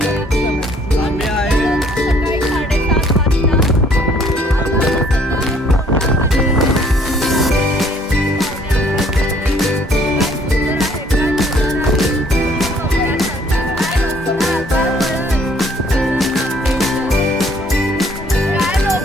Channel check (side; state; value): both; normal; correlation 0.61